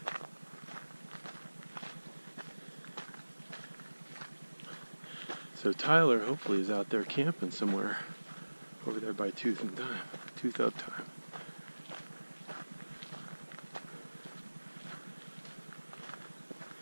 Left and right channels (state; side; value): inverted; both; correlation -1.00